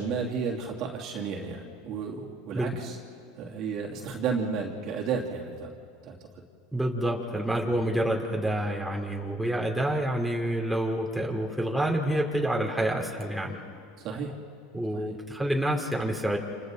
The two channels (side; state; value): both; normal; correlation 0.73